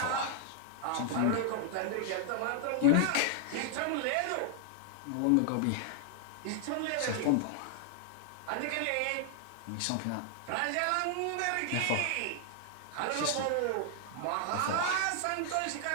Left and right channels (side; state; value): both; different; correlation 0.00